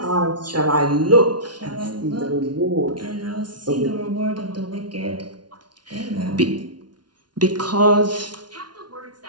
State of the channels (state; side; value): late; left; 0.70 ms